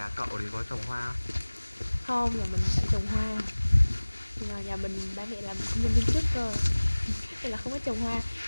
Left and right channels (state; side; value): inverted; both; correlation -1.00